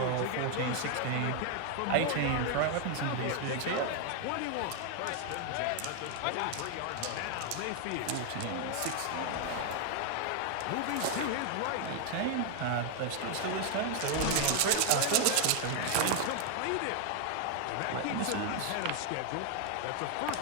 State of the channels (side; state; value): both; different; correlation 0.00